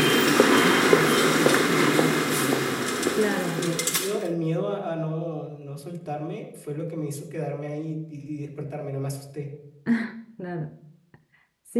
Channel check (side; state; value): both; identical; correlation 1.00